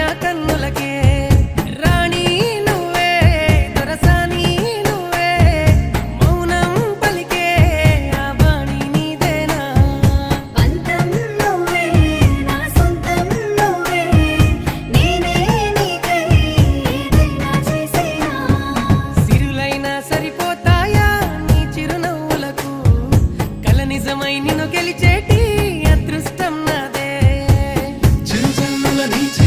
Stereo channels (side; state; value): both; identical; correlation 1.00